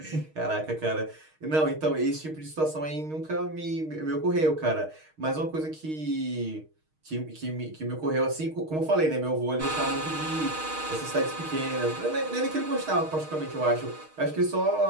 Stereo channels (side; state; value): left; late; 6.4 ms